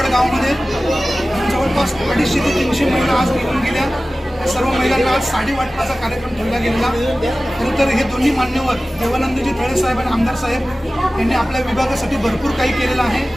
गावामध्ये जवळपास 250 ते 300 महिला आज निघून गेल्या. सर्व महिलांना आज साडी वाटपाचा कार्यक्रम ठेवला गेलेला. खरं तर हे दोन्ही मान्यवर देवानंदजी तळे साहेब आणि आमदार साहेब यांनी आपल्या विभागासाठी भरपूर काही केलेलं आहे.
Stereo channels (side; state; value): both; normal; correlation 0.97